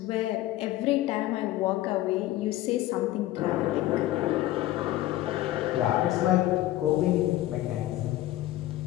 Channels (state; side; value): quieter; right; 15.3 dB